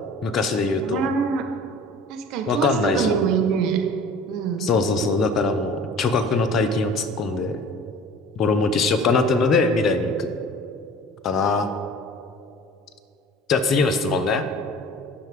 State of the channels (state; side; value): normal; both; correlation 0.44